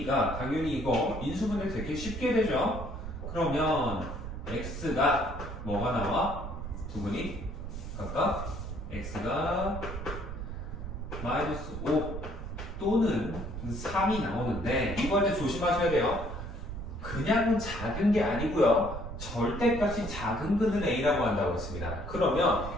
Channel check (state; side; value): noise; right; rumble, 7 dB below the sound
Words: 당연히 이거 인수분해 되게 쉽게 되죠. 그러면 X가 뭐가 나와? 두 근이 각각 X가 마이너스 5 또는 3이 나오는데 이번에 조심하셔야 돼요. 그냥 작은 게 아니고요. 절대값이 작은 근을 A라고 한다고 했습니다. 그러면